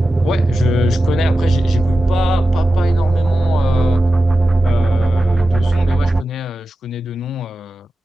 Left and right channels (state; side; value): normal; both; correlation 0.93